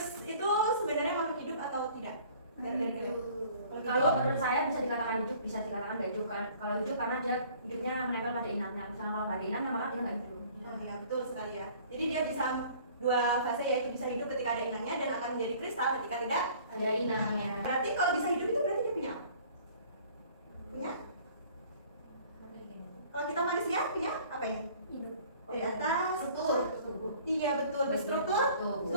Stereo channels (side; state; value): both; inverted; correlation -0.52